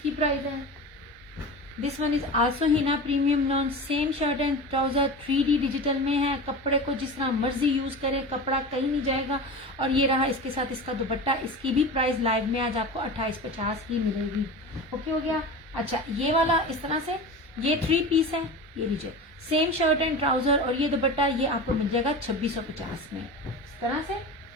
प्राइस है। This one is also Hina premium lawn, same shirt and trouser, 3D digital में है। कपड़े को जिस तरह मर्जी यूज करे, कपड़ा कहीं नहीं जाएगा। और ये रहा इसके साथ इसका दुपट्टा, इसकी भी प्राइस लाइव में आज आपको 2850 ही मिलेगी। ओके हो गया। अच्छा, ये वाला इस तरह से, ये 3 पीस है, ये लीजिए, सेम शर्ट एंड ट्राउजर और ये दुपट्टा, ये आपको मिल जाएगा 2650 में इस तरह से।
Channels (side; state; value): both; normal; correlation 0.30